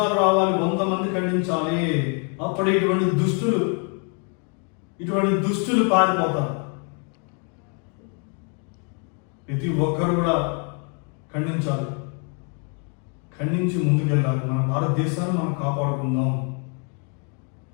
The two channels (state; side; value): quieter; right; 39.7 dB